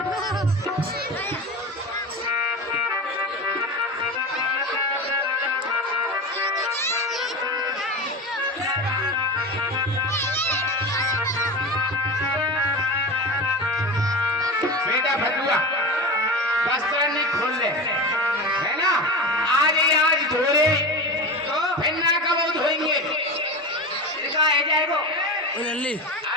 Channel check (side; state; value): both; normal; correlation 0.26